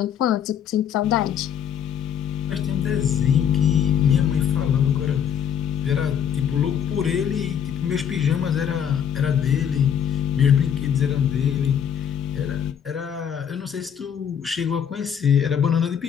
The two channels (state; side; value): quieter; right; 8.6 dB